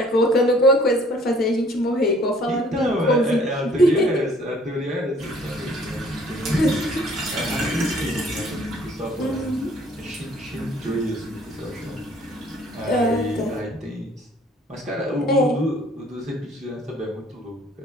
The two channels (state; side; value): normal; both; correlation 0.57